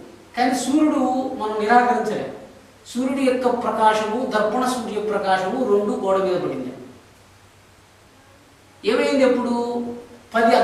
కానీ సూర్యుడు మనం నిరాకరించలేము. సూర్యుడి యొక్క ప్రకాశము, దర్పణ సూర్య ప్రకాశము రెండు గోడ మీద పడింది. ఏమైంది? ఎప్పుడు 10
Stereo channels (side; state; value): both; identical; correlation 1.00